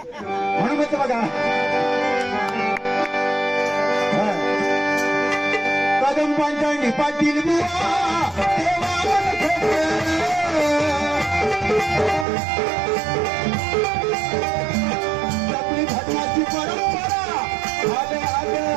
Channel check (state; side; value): drops out; left; at 12.2 s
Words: म्हणून म्हणतो बघा. कदंबांच्या निपातील जपली भजनाची परंपरा